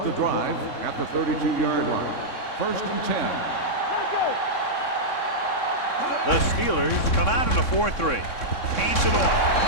the drive at the 32-yard line. First and 10. The Steelers come out in a 4-3. Hands it off.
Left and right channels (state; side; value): late; right; 3.6 ms